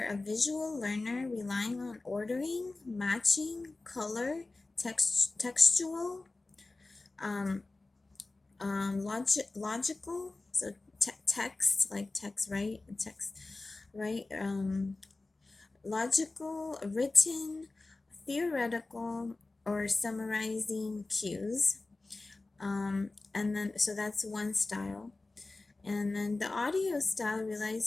a visual learner relying on ordering, matching, color, textual, logical, so text, like text, right? Text, right? Logical, written, theoretical, or summarizing cues. And then, so that's one style. And then the audio style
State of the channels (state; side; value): quieter; right; 3.3 dB